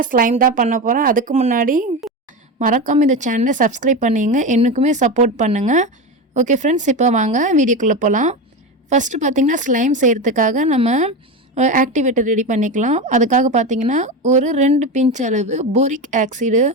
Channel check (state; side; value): normal; both; correlation 0.19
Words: ஸ்லைம் தான் பண்ண போகிறேன். அதுக்கு முன்னாடி மறக்காமல் இந்த சேனலை சப்ஸ்கிரைப் பண்ணிங்க, எனக்குமே சப்போர்ட் பண்ணுங்கள். ஓகே ஃப்ரெண்ட்ஸ், இப்போ வாங்க வீடியோக்குள்ளே போகலாம். ஃபஸ்ட்டு பார்த்திங்கன்னா ஸ்லைம் செய்கிறதுக்காக நம்ம ஆக்டிவேட்டர் ரெடி பண்ணிக்கலாம். அதுக்காக பார்த்திங்கன்னா ஒரு 2 பிஞ்ச் அளவு போரிக் ஆக்சைடு